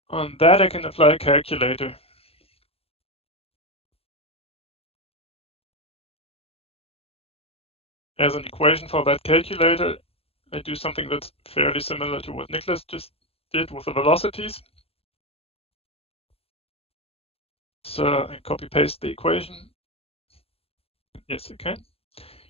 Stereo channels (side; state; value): right; late; 0.28 ms